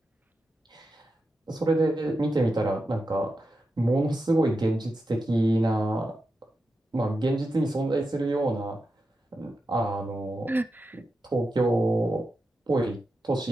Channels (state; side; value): normal; both; correlation 0.89